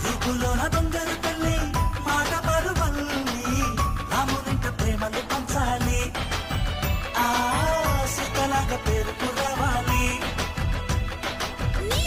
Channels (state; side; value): identical; both; correlation 1.00